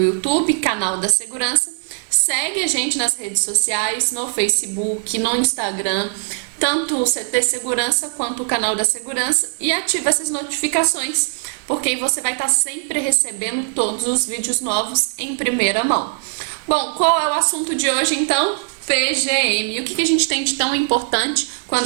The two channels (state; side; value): silent; left; digital silence